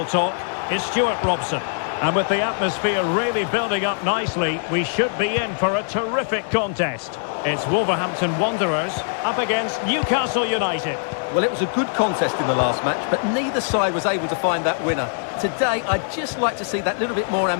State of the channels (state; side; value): silent; right; 64 dB below the other